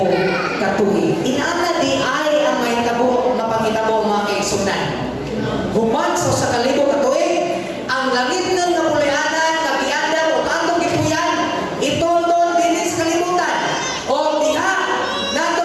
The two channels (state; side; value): identical; both; correlation 1.00